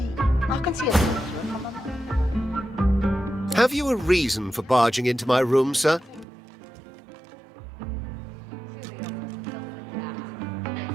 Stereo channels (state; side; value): drops out; left; at 6.2 s